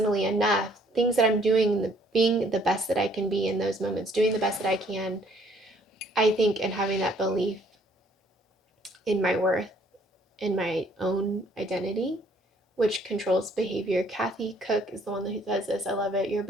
enough. Things that I'm doing, being the best that I can be in those moments, doing the best that I can, I think, and having that belief in my worth, in my own identity, which controls behavior. Kathy Cook is the one who says this. I love it. Your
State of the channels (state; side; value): normal; both; correlation 0.62